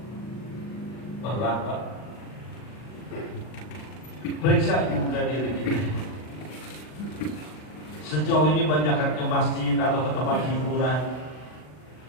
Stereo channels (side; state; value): right; late; 40 ms